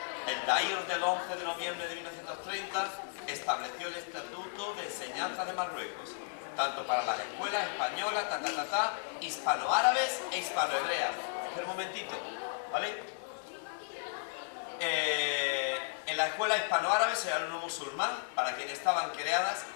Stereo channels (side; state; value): right; silent; digital silence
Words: El Dair del 11 de noviembre de 1930 estableció el Estatuto de Enseñanza de Marruecos, tanto para las escuelas españolas, hispano-árabes e hispano-hebreas. Espera un momentito, ¿vale? En la escuela hispano-árabe, el alumno musulmán, para quienes estaban creadas,